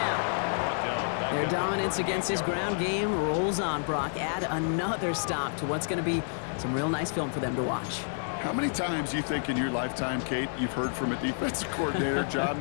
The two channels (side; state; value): right; silent; digital silence